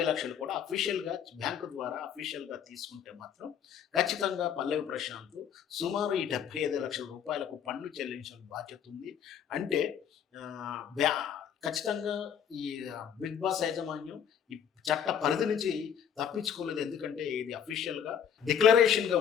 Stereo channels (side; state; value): right; quieter; 8.3 dB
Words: లక్షలు కూడా అఫీషియల్గా బ్యాంకు ద్వారా అఫీషియల్గా తీసుకుంటే మాత్రం ఖచ్చితంగా పల్లవి ప్రశాంత్ సుమారు ఈ 75 లక్షల రూపాయలకు పన్ను చెల్లించిన బాధ్యత ఉంది. అంటే ఖచ్చితంగా ఈ బిగ్ బాస్ యాజమాన్యం ఈ చట్ట పరిధి నుంచి తప్పించుకోలేదు. ఎందుకంటే ఇది అఫీషియల్గా డిక్లరేషన్గా